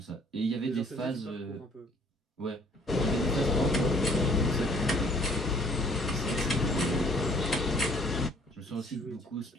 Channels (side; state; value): both; normal; correlation 0.58